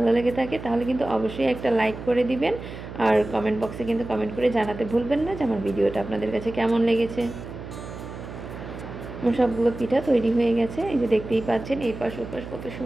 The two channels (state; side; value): noise; right; hum, 11 dB below the sound